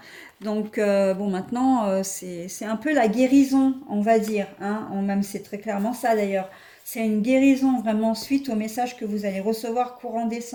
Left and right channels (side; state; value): both; identical; correlation 1.00